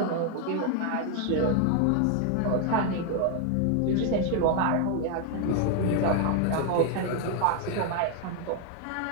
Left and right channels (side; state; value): both; different; correlation 0.01